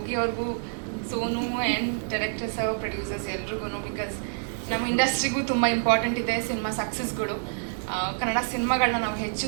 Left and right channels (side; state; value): left; silent; digital silence